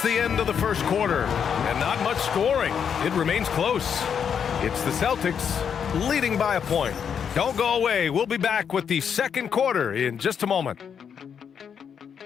the end of the first quarter. And not much scoring. It remains close. It's the Celtics leading by a point. Don't go away. We'll be back with the second quarter in just a moment.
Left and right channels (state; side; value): quieter; right; 7.5 dB